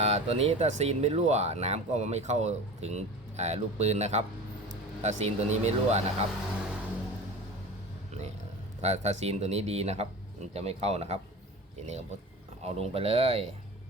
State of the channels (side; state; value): both; normal; correlation 0.34